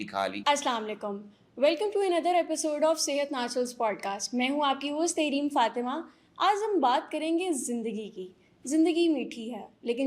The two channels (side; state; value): both; identical; correlation 1.00